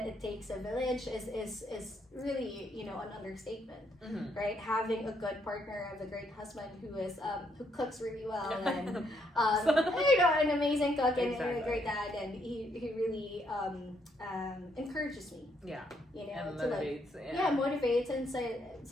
it takes a village is really, an understatement, right? Having a good partner, a great husband who cooks really well, and an amazing cook and a great dad, and he really encourages me. Yeah. And motivates. Motivates and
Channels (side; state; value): both; normal; correlation 0.73